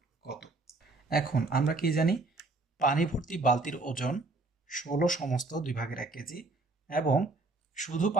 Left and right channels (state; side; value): quieter; left; 3.4 dB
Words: কত। এখন আমরা কি জানি, পানি ভর্তি বালতির ওজন 16 সমস্ত 2/1 কেজি, এবং শুধু